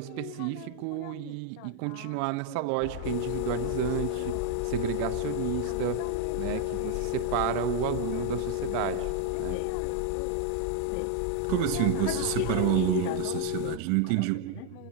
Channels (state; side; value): different; both; correlation 0.00